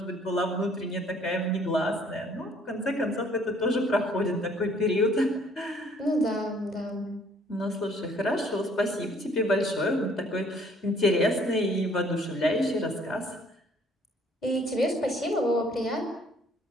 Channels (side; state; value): both; normal; correlation 0.60